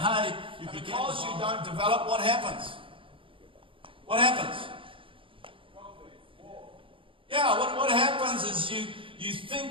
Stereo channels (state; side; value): late; left; 0.25 ms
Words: because you don't develop, what happens? What happens? Yeah, what happens is you